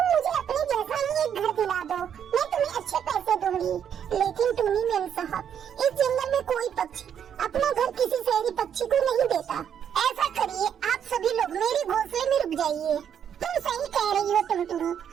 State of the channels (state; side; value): quieter; left; 8.7 dB